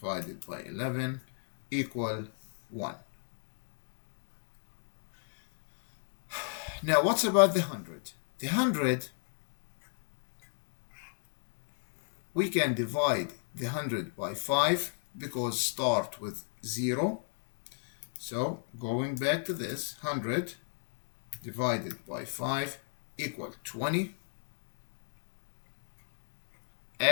by 11 equal 1. Now what's about the 100? The 100, we can divide the 100 by 5, because start with 0. So going back to this, 100 divided by 5 equal 20.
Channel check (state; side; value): silent; right; 57 dB below the other